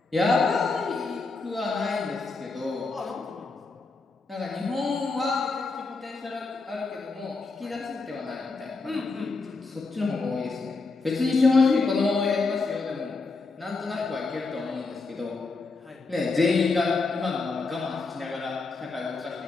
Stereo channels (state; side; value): quieter; right; 3.9 dB